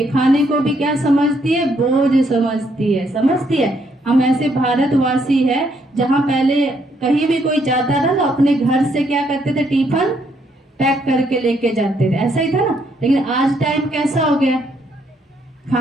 खाने को भी क्या समझती है? बोझ समझती है। समझती है? हम ऐसे भारतवासी है जहाँ पहले कहीं भी कोई जाता था तो अपने घर से क्या करते थे? टिफिन पैक करके लेके जाते थे, ऐसा ही था ना। लेकिन आज टाइम कैसा हो गया?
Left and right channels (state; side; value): normal; both; correlation 0.72